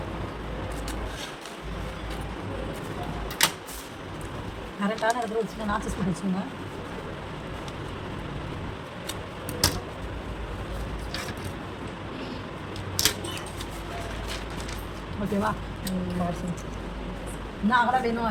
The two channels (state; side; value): identical; both; correlation 1.00